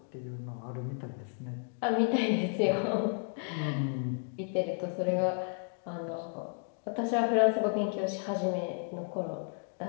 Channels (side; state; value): right; silent; 56 dB below the other